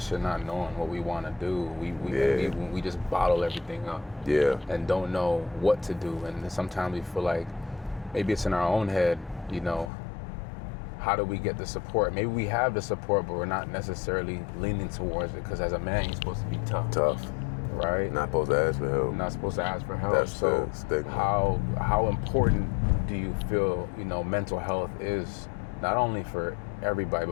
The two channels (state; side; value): drops out; right; at 9.9 s